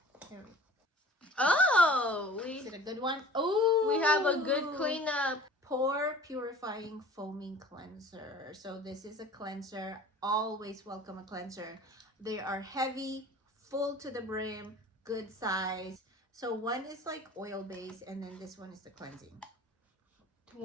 Here. Oh, Is it a good one? Oh, we have a good cleanup. Pore Purifying Foaming Cleanser. So this is a cleanser. Always welcome a cleanser. They are heavy, full to the brim, good size. So one is like oil based, and then this one is the cleansing.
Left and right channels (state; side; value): normal; both; correlation 0.45